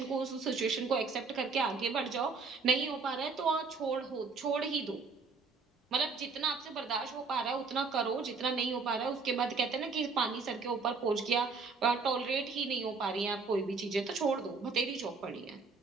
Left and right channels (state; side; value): quieter; left; 4.6 dB